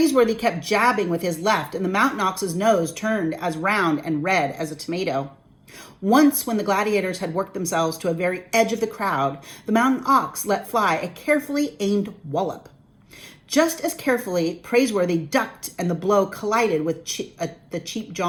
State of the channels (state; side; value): identical; both; correlation 1.00